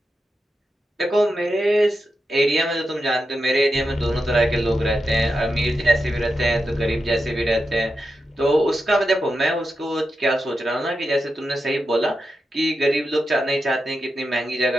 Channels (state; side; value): normal; both; correlation 0.88